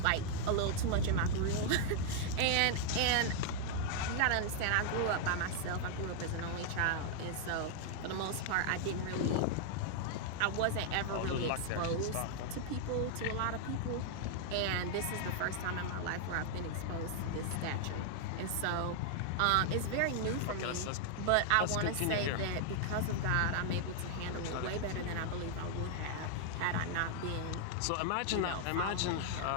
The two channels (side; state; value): both; different; correlation 0.00